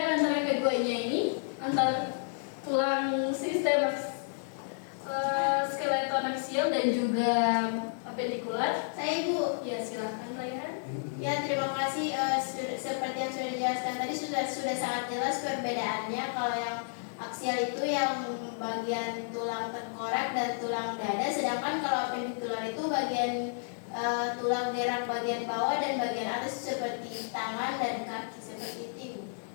antara keduanya ini, antara tulang sistem skeleton aksial dan juga apendikular. Saya Ibu. Ya, silakan Raihan. Ya, terima kasih. Seperti yang sudah dijelaskan tadi sudah sangat jelas perbedaannya. Kalau yang aksial itu yang bagian tulang tengkorak dan tulang dada, sedangkan kalau apendikular itu bagian tulang gerak bagian bawah dan bagian atas seperti tangan dan kaki seperti itu.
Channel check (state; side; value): silent; right; 57 dB below the other